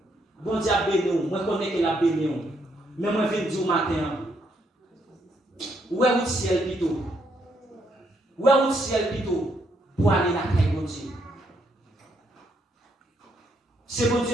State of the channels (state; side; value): normal; both; correlation 0.74